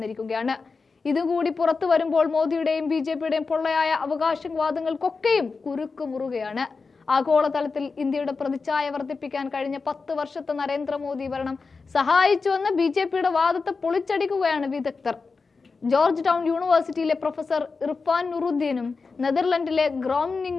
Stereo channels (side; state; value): right; quieter; 4.5 dB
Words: ഇതുകൂടി പുറത്തു വരുമ്പോൾ മോദിയുടെയും BJPയുടെയും പൊള്ളയായ അവകാശവാദങ്ങൾക്കൊക്കെയും കുരുക്കുമുറുകയാണ്. ആഗോളതലത്തിൽ ഇന്ത്യയുടെ പ്രതിച്ഛായ വർദ്ധിപ്പിക്കാൻ കഴിഞ്ഞ 10 വർഷത്തെ നരേന്ദ്രമോദി ഭരണം സഹായിച്ചുവെന്ന BJPയുടെ വാദത്തെ പൊളിച്ചടിക്കുകയാണ് വിദഗ്ധർ. ജോർജ് ടൗൺ യൂണിവേഴ്സിറ്റിയിലെ പ്രൊഫസർ ഇർഫാൻ നുറുദ്ദീനും നെതർലൻഡിലെ